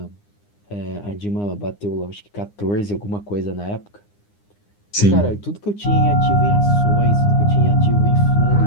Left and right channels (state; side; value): late; right; 9.8 ms